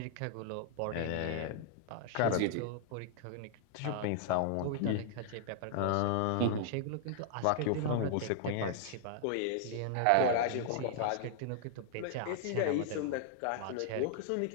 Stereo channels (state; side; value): different; both; correlation -0.01